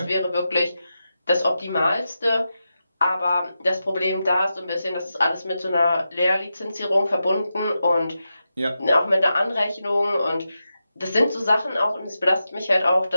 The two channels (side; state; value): both; inverted; correlation -0.89